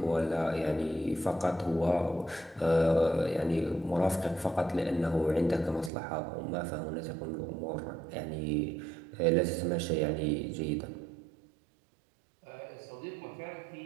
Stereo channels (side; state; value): left; drops out; at 5.9 s